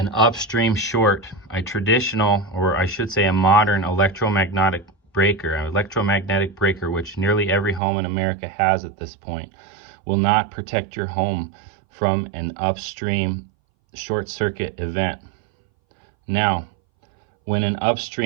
upstream short, a traditional, or I should say a modern electromagnetic breaker, which nearly every home in America has at this point, will not protect your home from an upstream short circuit event. Now, when an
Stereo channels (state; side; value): drops out; left; at 7.8 s